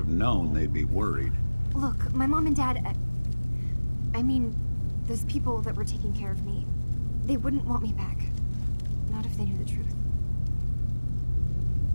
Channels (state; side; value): inverted; both; correlation -1.00